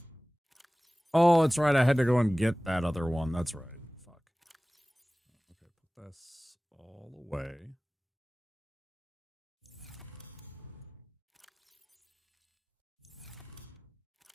Oh, that's right. I had to go and get that other one. That's right. Fuck. Okay, put this all away.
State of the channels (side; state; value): both; normal; correlation 0.98